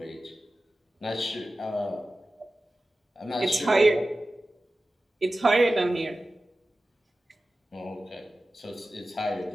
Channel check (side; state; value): both; normal; correlation 0.95